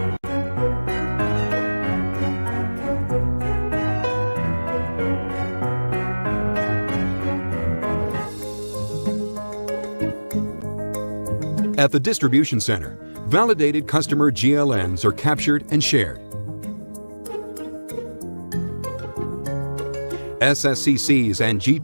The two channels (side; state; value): both; inverted; correlation -1.00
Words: At the distribution center, validated customer GLNs are captured and shared. SSCCs and